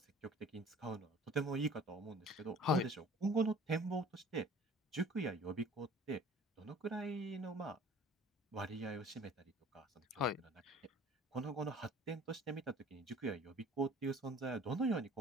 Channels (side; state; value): both; normal; correlation 0.48